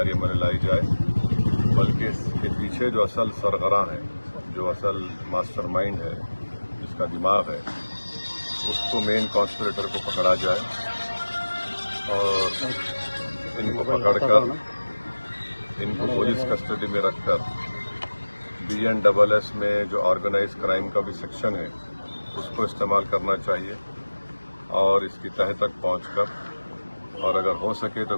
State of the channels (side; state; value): both; inverted; correlation -1.00